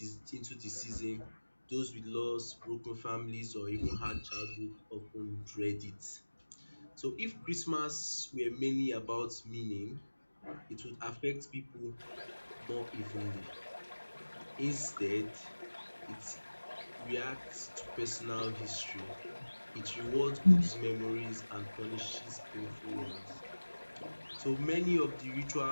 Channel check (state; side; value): inverted; both; correlation -1.00